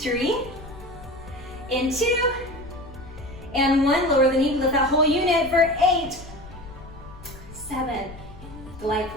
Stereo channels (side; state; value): left; noise; rumble, 16 dB below the sound